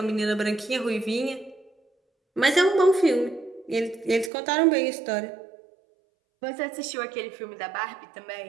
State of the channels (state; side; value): drops out; left; at 4.3 s